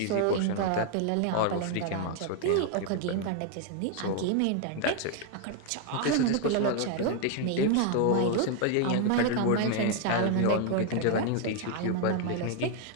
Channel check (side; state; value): both; different; correlation 0.00